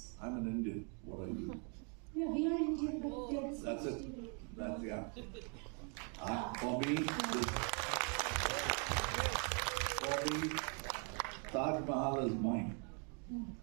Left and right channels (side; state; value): left; quieter; 39.0 dB